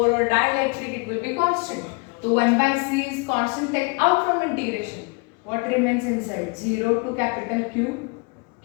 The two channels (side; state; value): right; quieter; 31.1 dB